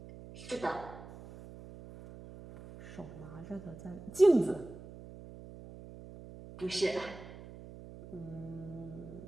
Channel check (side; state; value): right; noise; hum, 15 dB below the sound